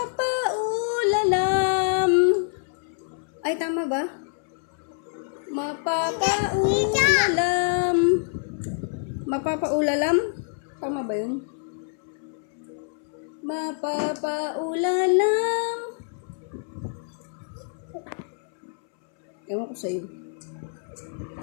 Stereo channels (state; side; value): silent; right; 61 dB below the other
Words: Ay, tama ba? Mapapaulalam. Mapapaulalam? Tama ba yun? Mapapaulalam. Ewan ko sa'yo.